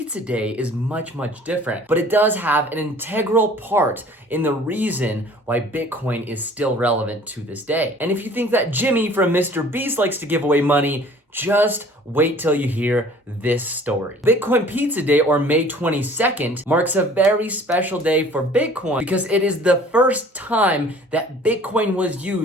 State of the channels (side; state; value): both; normal; correlation 0.51